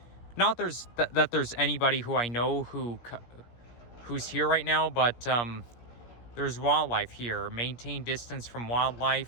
Not that there's anybody who I know who's here right now, but there's wildlife here. Maintain distance from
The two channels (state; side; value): late; right; 17 ms